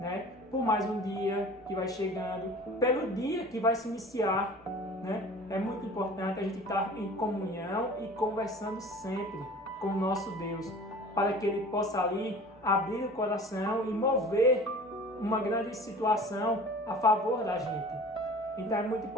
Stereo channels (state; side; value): normal; both; correlation 0.43